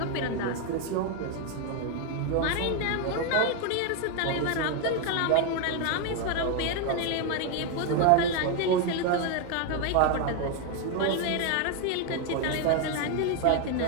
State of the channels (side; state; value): both; different; correlation 0.01